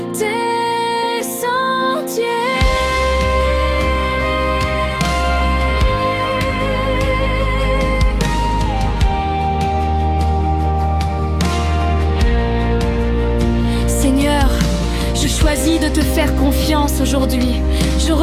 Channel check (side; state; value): both; identical; correlation 1.00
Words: tes sentiers. Seigneur, je choisis de te faire confiance aujourd'hui. Je